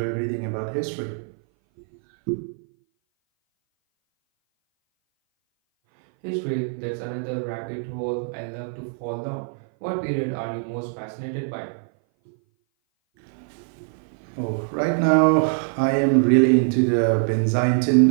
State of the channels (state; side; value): silent; left; 58 dB below the other